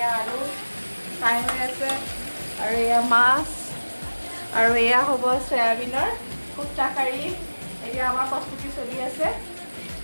আলু ফ্ৰাই হৈ আছে আৰু এয়া মাছ আৰু এয়া হ'ব চয়াবিনৰ কোফ্তা কাৰী এতিয়া আমাৰ প্ৰস্তুতি চলি আছে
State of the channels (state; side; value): inverted; both; correlation -1.00